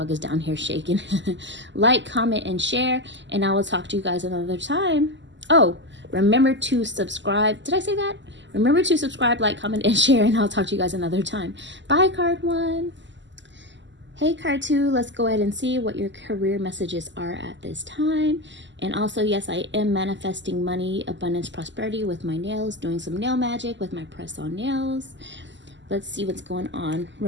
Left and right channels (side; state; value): left; late; 0.53 ms